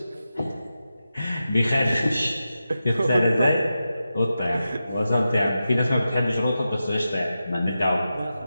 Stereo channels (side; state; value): both; inverted; correlation -0.91